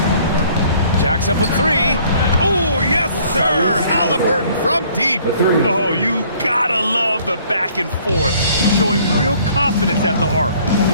Jacks up a 3. Oh, yes, sir. Halliburton from deep. Oh, you gotta love the back and forth, showing real confidence at the arc.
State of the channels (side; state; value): both; inverted; correlation -0.58